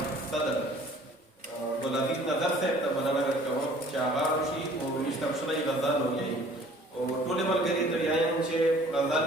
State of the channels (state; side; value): normal; both; correlation 0.53